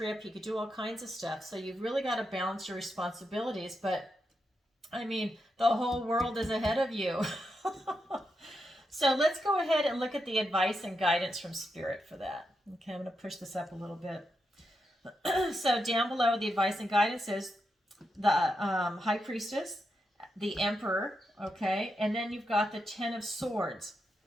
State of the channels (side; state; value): both; normal; correlation 0.85